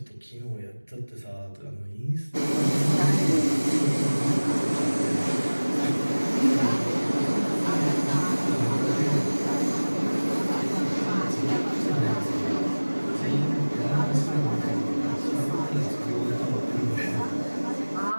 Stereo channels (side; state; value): both; inverted; correlation -1.00